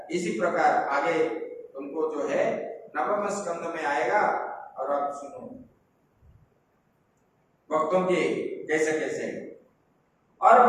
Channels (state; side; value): identical; both; correlation 1.00